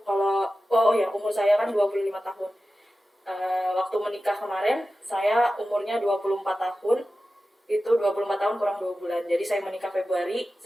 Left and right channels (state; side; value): normal; both; correlation 0.94